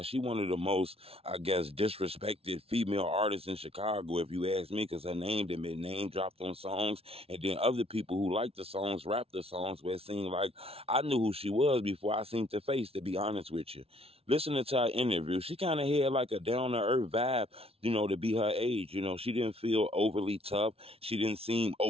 She one of the most, I guess, disrespected female artists in Chicago, if you ask me, because her name had been name dropped on songs, and then other people who like the songs rap the songs where it seemed like I knew who she was before I seen her face, to be honest with you. Listening to her interview, she kind of had like a down-to-earth vibe, to be her age. She didn't feel overly tough. She didn't seem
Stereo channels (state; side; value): late; left; 0.28 ms